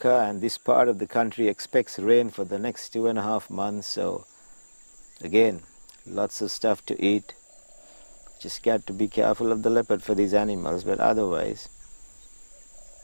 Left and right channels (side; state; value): both; inverted; correlation -1.00